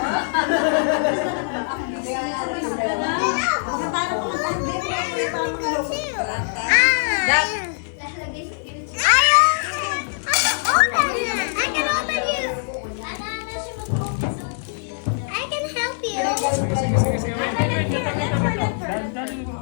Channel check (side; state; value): right; silent; digital silence